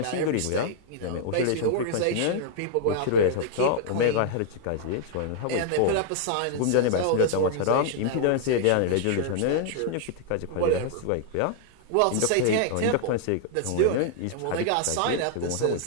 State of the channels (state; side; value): different; both; correlation -0.01